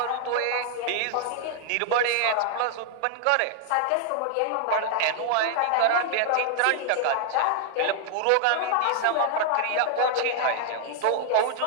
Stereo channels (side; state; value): both; different; correlation 0.00